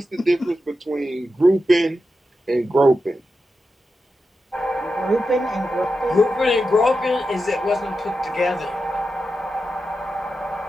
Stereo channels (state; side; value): normal; both; correlation 0.89